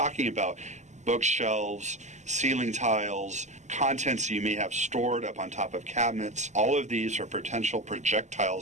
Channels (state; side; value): late; left; 0.34 ms